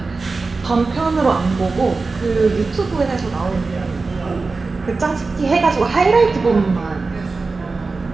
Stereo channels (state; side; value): quieter; left; 3.9 dB